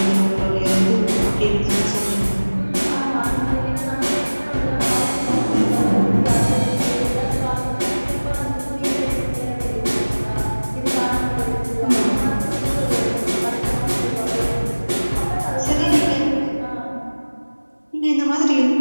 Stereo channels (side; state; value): both; inverted; correlation -1.00